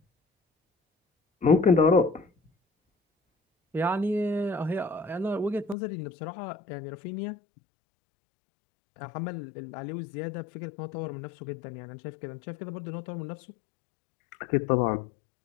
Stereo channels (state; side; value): drops out; right; at 5.8 s